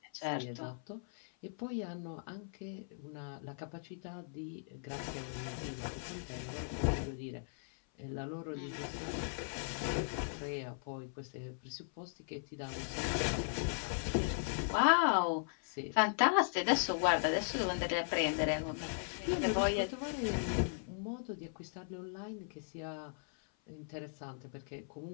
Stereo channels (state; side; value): silent; right; 52 dB below the other